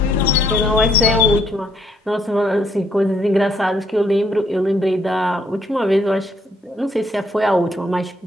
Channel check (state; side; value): normal; both; correlation 0.70